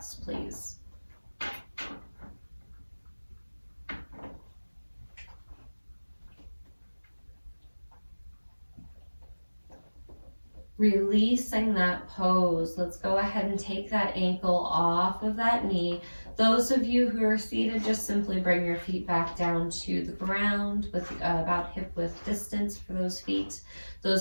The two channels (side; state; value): both; inverted; correlation -1.00